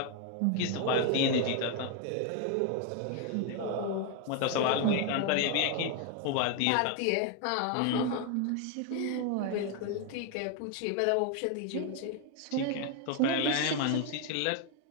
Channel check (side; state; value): both; different; correlation 0.01